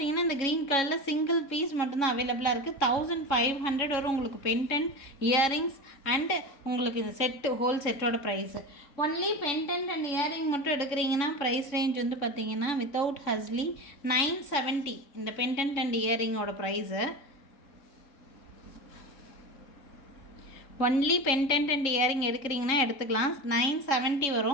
இந்த க்ரீன் கலரில் சிங்கிள் பீஸ் மட்டும்தான் அவைலபிளாக இருக்குது. 1500 வரும் உங்களுக்கு பெண்டன்ட், இயரிங்ஸ் அண்டு உங்களுக்கு இந்த செட்டு ஹோல் செட்டோட price. Only pendant and earring மட்டும் எடுக்கிறீங்கன்னா ப்ரைஸ் ரேஞ்ச் வந்து பார்த்திங்கன்னா வித்தவுட் ஹஸ்லி 970 இந்த பெண்டன்ட் அண்ட் இயரிங்கோட price. Only pendant and earring எடுக்கிறீங்கன்னா எடுத்துக்கலாம், 970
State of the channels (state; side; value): late; right; 3.7 ms